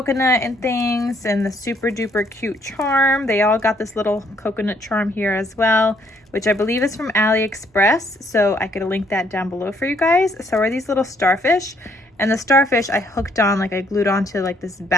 and things and the super duper cute charm. They all got this little coconut charm here as well, which I believe is from AliExpress. So I could link that down below for you guys. So are these little starfish, and the starfish I hooked on, like I glued onto like this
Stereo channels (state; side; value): normal; both; correlation 0.68